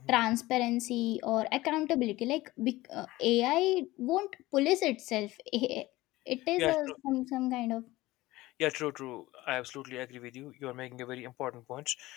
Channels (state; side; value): quieter; right; 18.5 dB